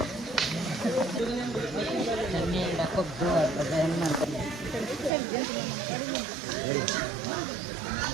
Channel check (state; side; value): drops out; left; at 5.1 s